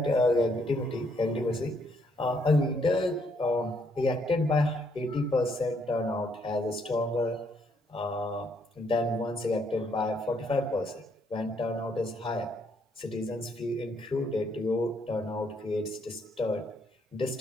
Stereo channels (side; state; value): both; normal; correlation 0.71